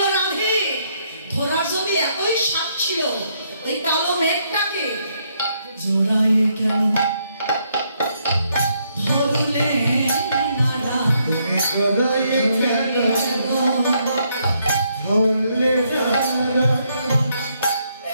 রাধে ধরার যদি এতই সাপ ছিল, ওই কালো মেঘটাকে জোড়ায় কেন ধরলে না, জোড়ায় কেন ধরলে না,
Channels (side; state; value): both; inverted; correlation -0.73